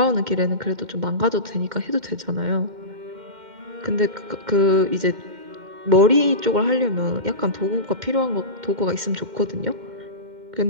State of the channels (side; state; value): left; late; 2.1 ms